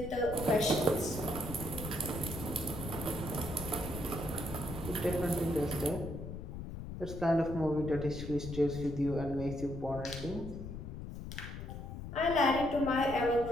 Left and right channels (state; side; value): noise; left; rumble, 9 dB below the sound